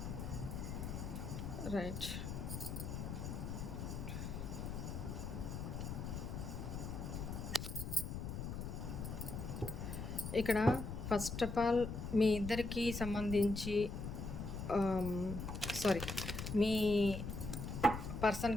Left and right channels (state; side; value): noise; left; rumble, 5 dB below the sound